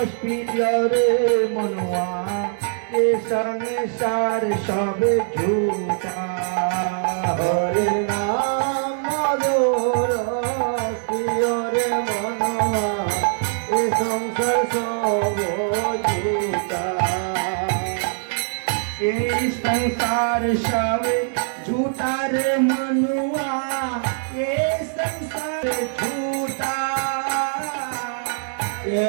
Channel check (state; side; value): silent; left; digital silence